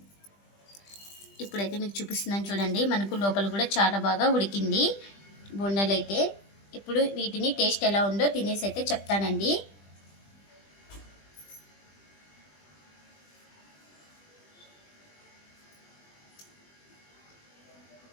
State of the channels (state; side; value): late; right; 20 ms